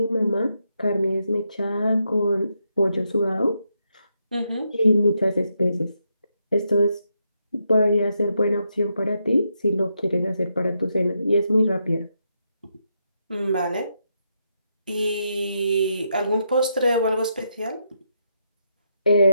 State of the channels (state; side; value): inverted; both; correlation -0.81